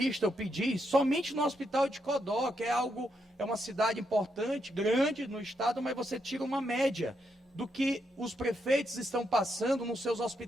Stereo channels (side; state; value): both; normal; correlation 0.80